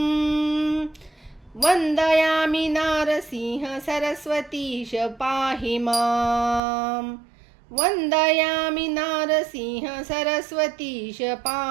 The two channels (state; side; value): drops out; left; at 6.6 s